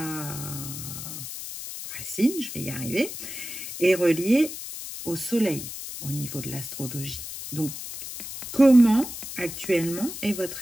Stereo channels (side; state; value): left; noise; hiss, 9 dB below the sound